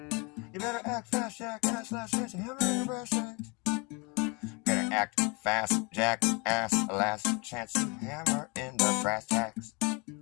You better act fast, jackass, last chance to hammer in the brass tacks. Better act fast, jackass, last chance to hammer in the brass tacks.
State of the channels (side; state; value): right; quieter; 29.7 dB